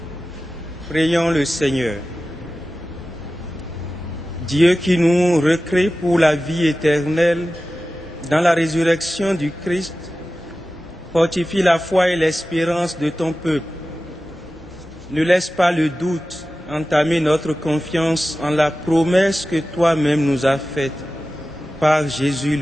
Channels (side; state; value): both; normal; correlation 0.95